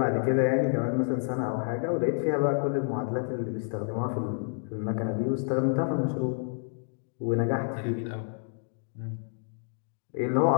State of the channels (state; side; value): silent; right; 59 dB below the other